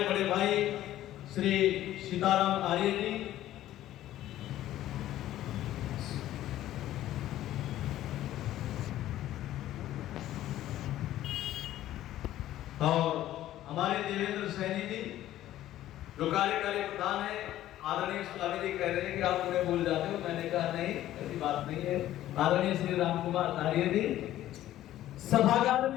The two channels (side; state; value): right; quieter; 13.6 dB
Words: बड़े भाई श्री सीताराम आर्य जी, और हमारे देवेंद्र सैनी जी जो कार्यकारी प्रधान है। आदरणीय स्वामी जी कह रहे हैं कि आप उन्हें भूल जाते हो, मैंने कहा नहीं, ऐसी बात नहीं है। आदरणीय श्री राम कुमार आर्य जी, सभागार